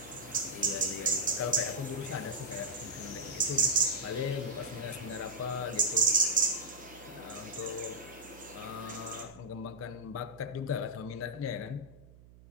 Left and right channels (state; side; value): noise; right; hum, 22 dB below the sound